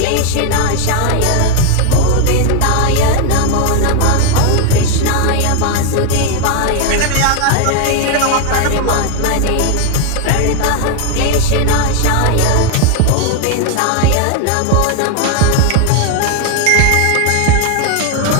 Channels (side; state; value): both; different; correlation 0.01